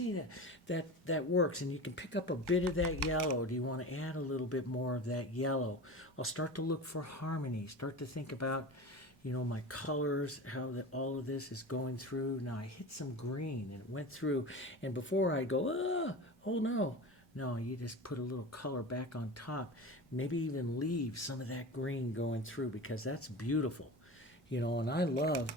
that works, and you can pick up a bit of that yellow. Do you want to add a little bit more of that yellow? I'll start to look for harmony, start to think about, my colors, how all of this is going through. Now I hit some green and it went through, and before I go, oh no, you just put a little color back on top. Maybe even leave some of that green going through, because that's beautiful. And I love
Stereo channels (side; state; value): both; normal; correlation 0.31